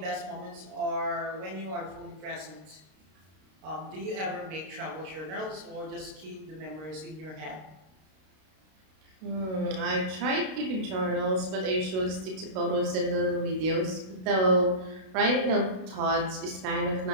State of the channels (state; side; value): late; left; 32 ms